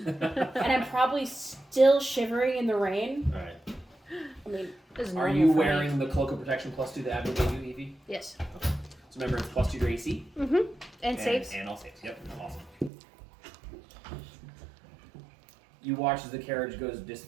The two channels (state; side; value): drops out; left; at 12.9 s